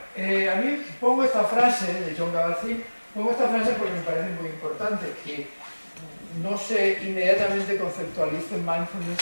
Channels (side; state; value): both; inverted; correlation -1.00